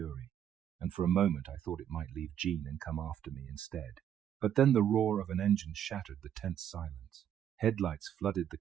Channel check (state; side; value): quieter; left; 9.8 dB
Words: and for a moment I thought it might leave Jean and come after me instead. But then the roar of an engine shattered the tense silence. Headlights flooded the